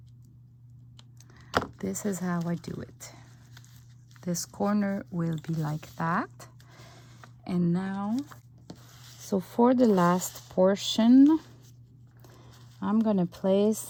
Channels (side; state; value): both; identical; correlation 1.00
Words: This is how I do it. This corner will be like that. And now, so for the last portion, I'm gonna